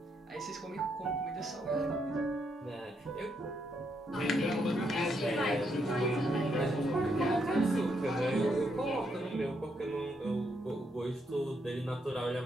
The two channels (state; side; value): normal; both; correlation 0.77